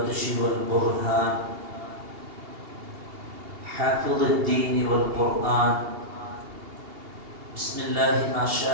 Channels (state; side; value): late; left; 2.8 ms